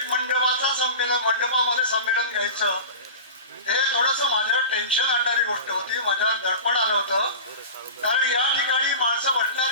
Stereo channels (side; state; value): both; inverted; correlation -0.31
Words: मंडपामध्ये संमेलन घ्यायचं हे थोडंसं माझ्यावर टेन्शन आणणारी गोष्ट होती, माझ्यावर दडपण आलं होतं. कारण या ठिकाणी माणसं बसणार